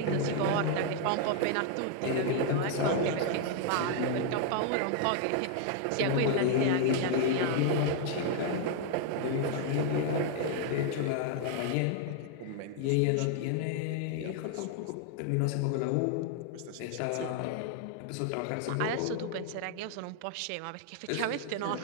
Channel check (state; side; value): different; both; correlation 0.00